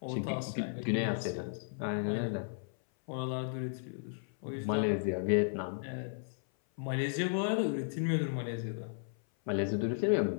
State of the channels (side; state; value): right; silent; 55 dB below the other